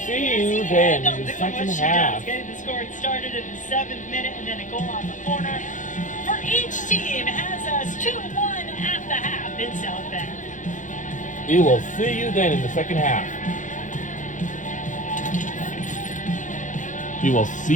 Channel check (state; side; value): late; right; 0.37 ms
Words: see you then in the second half. Getting the scoring started in the 7th minute, and then a goal on the corner for each team has us 2-1 at the half in South Bend. We will see you then in the second half. We will